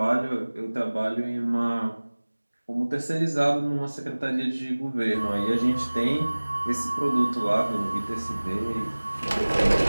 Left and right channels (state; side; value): inverted; both; correlation -1.00